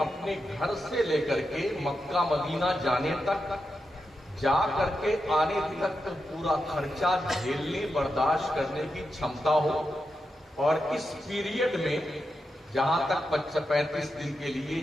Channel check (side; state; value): both; normal; correlation 0.87